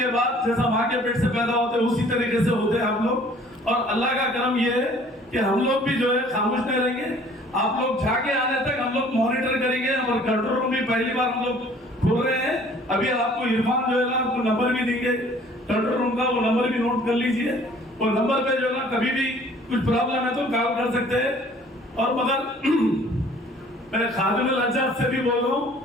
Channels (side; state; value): both; normal; correlation 0.54